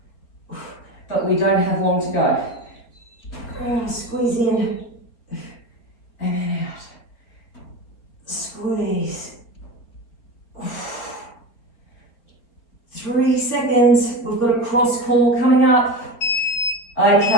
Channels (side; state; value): right; late; 4.4 ms